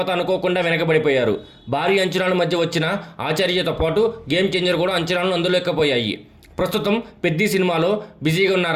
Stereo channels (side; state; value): both; identical; correlation 1.00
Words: అనుకోకుండా వెనకబడిపోయారు. భారీ అంచనాల మధ్య వచ్చిన ఆచార్యతో పాటు గేమ్ చేంజర్ కూడా అంచనాలను అందులేకపోయాయి. ప్రస్తుతం పెద్ది సినిమాలో బిజీగా